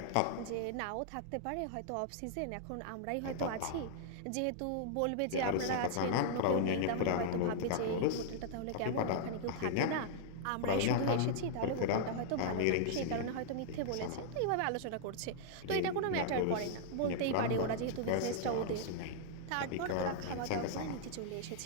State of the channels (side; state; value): both; different; correlation -0.01